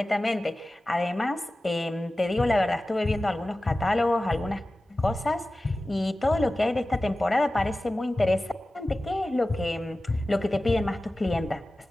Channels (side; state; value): both; normal; correlation 0.96